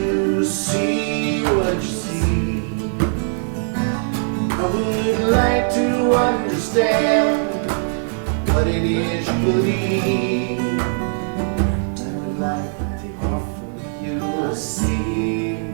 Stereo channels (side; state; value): left; silent; digital silence